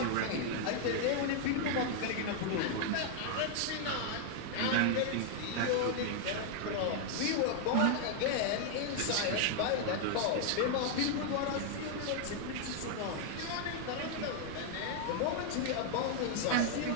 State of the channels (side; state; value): both; different; correlation 0.00